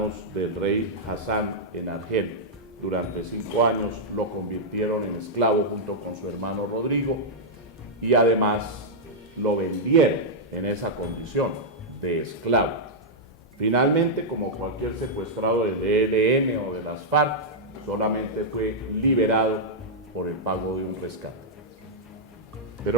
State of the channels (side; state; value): both; normal; correlation -0.07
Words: del rey Hassan en Argel. Durante 5 años lo convirtieron en esclavo junto con su hermano Rodrigo y además lo vendieron en esa condición de esclavo. Finalmente, como cualquier secuestrado del ELN o de las FARC, solamente fue liberado por el pago de un rescate.